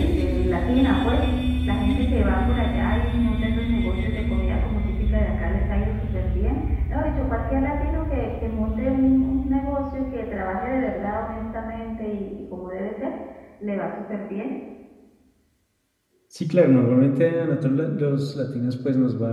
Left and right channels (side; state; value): both; identical; correlation 1.00